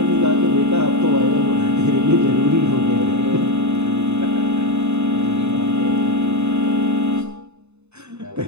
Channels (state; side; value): late; left; 0.81 ms